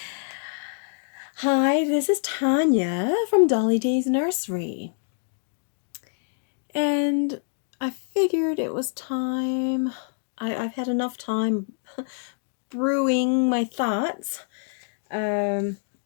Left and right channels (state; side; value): silent; right; digital silence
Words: Hi, this is Tanya from Dolly Day's Nursery. And I figured it was time. I've had enough time brewing my thoughts of